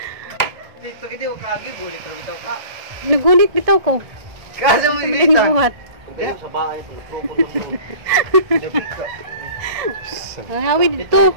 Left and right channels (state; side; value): late; left; 1.6 ms